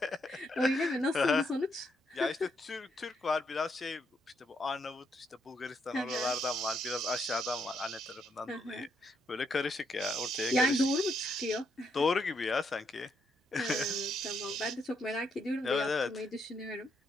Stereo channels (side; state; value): both; normal; correlation 0.76